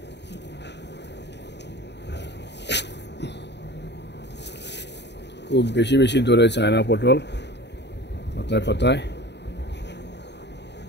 খুব বেশি বেশি ধরে চায়না পটল পাতায় পাতায়।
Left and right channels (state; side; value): late; right; 0.50 ms